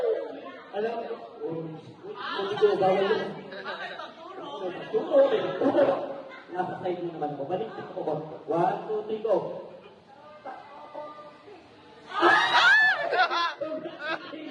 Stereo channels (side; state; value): both; identical; correlation 1.00